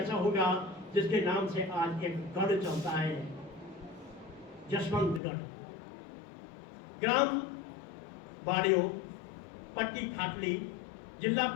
होगा जिसके नाम से आज एक गढ़ चलता है, जसवंतगढ़। ग्राम बाड़ियो, पट्टी खाटली, जिला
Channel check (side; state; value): right; drops out; at 5.2 s